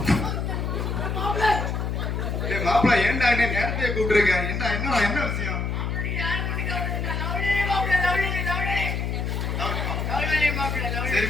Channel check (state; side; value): noise; left; hum, 1 dB below the sound